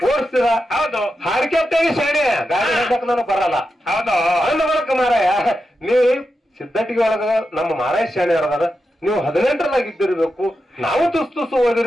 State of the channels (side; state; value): both; normal; correlation 0.88